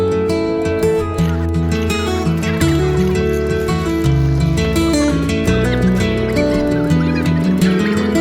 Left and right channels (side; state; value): both; identical; correlation 1.00